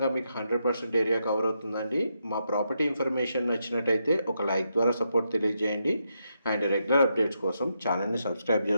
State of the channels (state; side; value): inverted; both; correlation -0.82